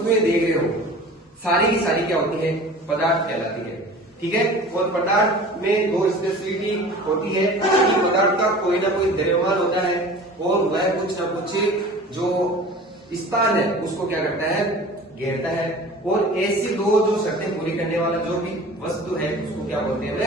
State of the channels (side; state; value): both; normal; correlation 0.41